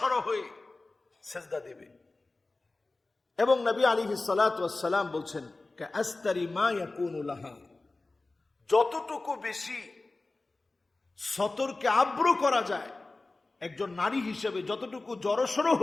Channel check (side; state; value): right; quieter; 3.2 dB